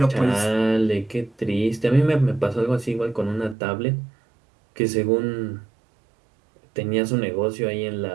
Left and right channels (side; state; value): left; drops out; at 3.6 s